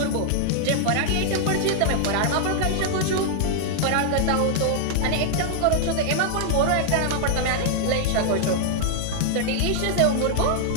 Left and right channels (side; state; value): both; different; correlation -0.01